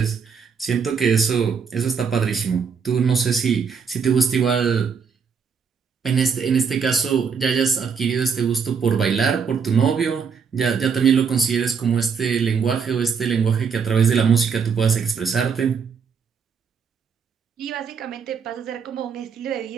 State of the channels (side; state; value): left; quieter; 6.2 dB